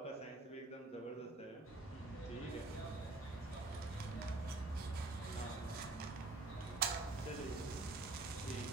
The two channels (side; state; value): left; quieter; 3.1 dB